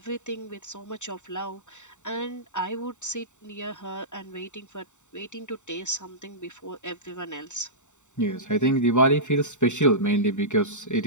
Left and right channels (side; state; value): right; late; 0.84 ms